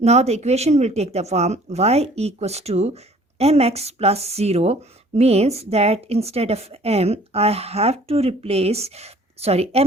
the equation will take the form y equals to mx plus 0 means that instead of m, I have to replace,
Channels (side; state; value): both; normal; correlation 0.54